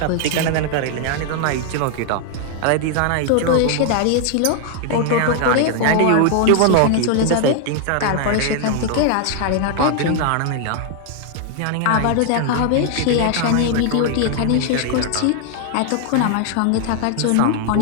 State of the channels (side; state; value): both; different; correlation 0.00